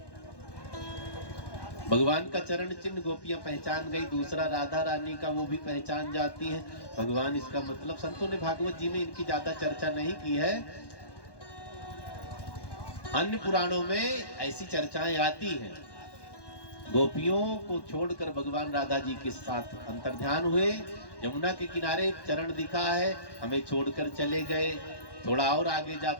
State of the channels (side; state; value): right; late; 1.1 ms